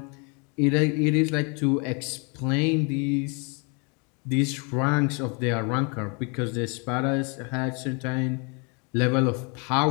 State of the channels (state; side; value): quieter; right; 33.7 dB